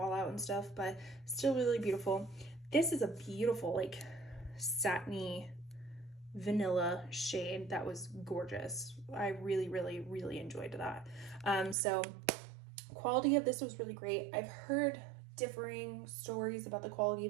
and stuff, but still really beautiful. This is a beautiful like satiny vanilla shade that was gorgeous. I really, really, really enjoyed that. So quality of this was really great. I've heard differing stories about the quality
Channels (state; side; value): drops out; left; at 11.8 s